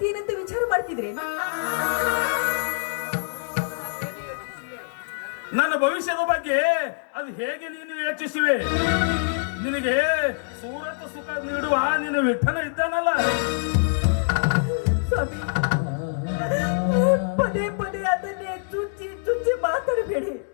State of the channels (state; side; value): silent; right; digital silence